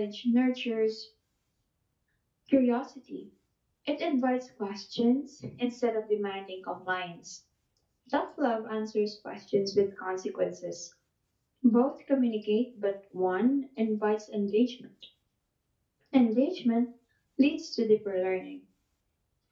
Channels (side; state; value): both; identical; correlation 1.00